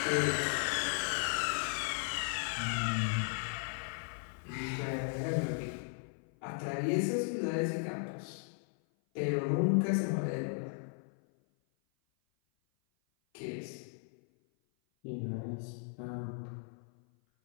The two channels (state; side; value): silent; right; 54 dB below the other